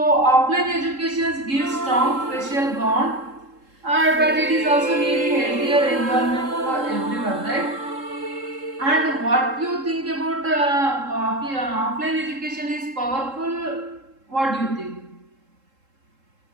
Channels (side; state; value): left; late; 3.7 ms